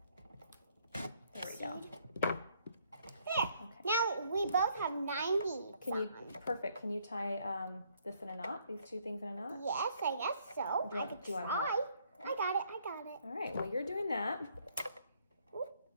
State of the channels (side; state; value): both; inverted; correlation -0.67